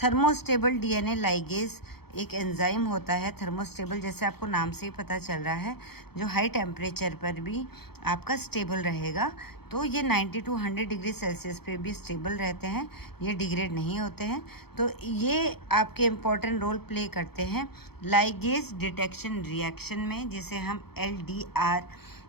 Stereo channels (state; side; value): late; right; 0.96 ms